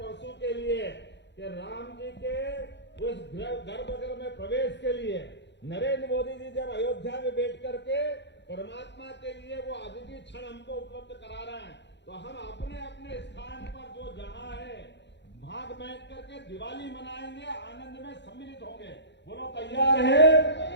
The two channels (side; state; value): right; late; 0.52 ms